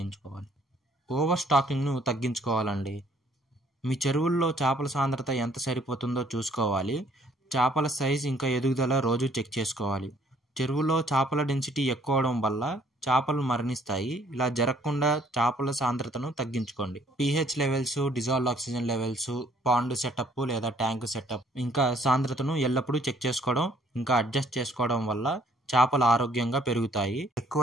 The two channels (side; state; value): both; normal; correlation 0.62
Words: ఓవర్ స్టాకింగ్ను తగ్గించుకోవాలండి. మీ చెరువుల్లో చేపల సాంద్రత ఎంత సరిపోతుందో చూసుకోవాలి. చేపల సైజ్ ఇంకా ఎదుగుదల రోజు చెక్ చేసుకోవాలి. చెరువులో చేపల డెన్సిటీ ఎక్కువ అవడం వల్ల చేపలు మరణిస్తాయి. ఇలా జరగకుండా చేపల సాంద్రతను తగ్గించుకోండి. pH levels, dissolved oxygen levels, pond setup లేదా ట్యాంక్ సెటప్ ఇంకా సాంద్రతను ఎల్లప్పుడూ చెక్ చేసుకోవడం ఇంకా అడ్జస్ట్ చేసుకోవడం వల్ల చేపలు ఆరోగ్యంగా పెరుగుతాయి,